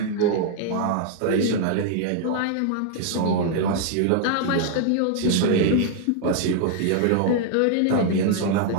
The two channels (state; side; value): different; both; correlation 0.00